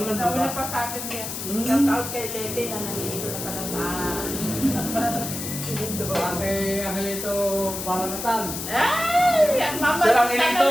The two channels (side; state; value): left; noise; hiss, 6 dB below the sound